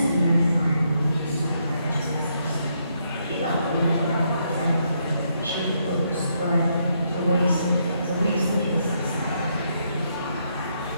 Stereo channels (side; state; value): both; inverted; correlation -0.76